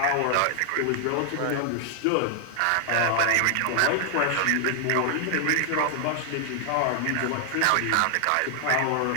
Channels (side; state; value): both; different; correlation 0.00